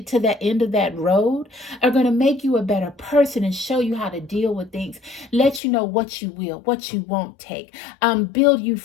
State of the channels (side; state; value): right; drops out; at 5.6 s